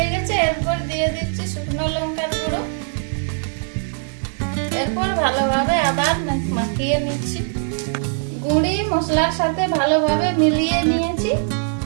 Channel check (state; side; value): silent; left; 65 dB below the other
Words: গেছে। এরপর দিয়ে দিচ্ছি শুকনো লঙ্কার গুঁড়ো। এরপর ভালোভাবে আবার মাখিয়ে নিচ্ছি। গুঁড়ি মশলার সাথে ভালোভাবে মিলিয়ে নিয়েছি।